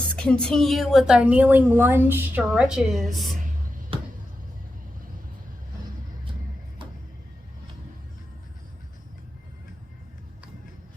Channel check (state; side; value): normal; both; correlation 0.90